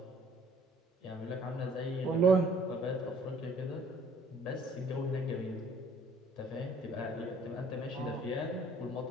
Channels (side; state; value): both; normal; correlation 0.57